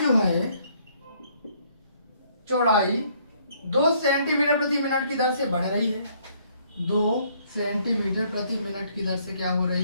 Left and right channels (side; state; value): both; inverted; correlation -0.65